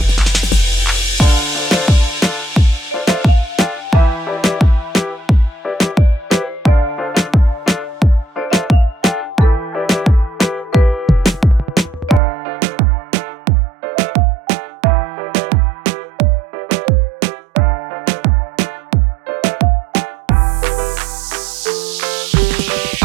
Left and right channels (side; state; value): left; drops out; at 12.2 s